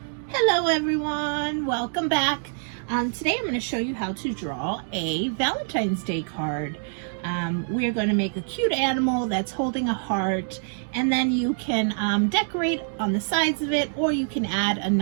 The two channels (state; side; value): silent; left; digital silence